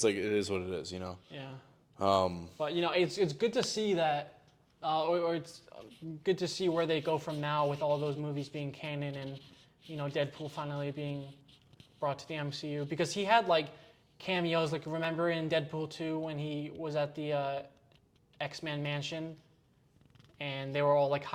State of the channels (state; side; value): identical; both; correlation 1.00